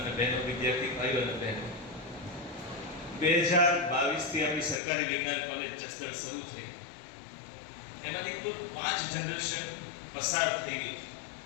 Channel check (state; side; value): drops out; right; at 4.8 s